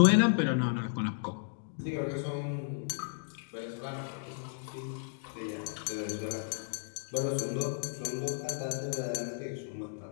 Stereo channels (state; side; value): silent; right; digital silence